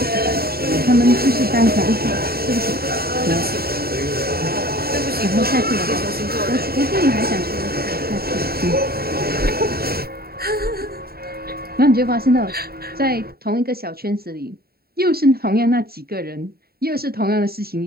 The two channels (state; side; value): late; left; 0.45 ms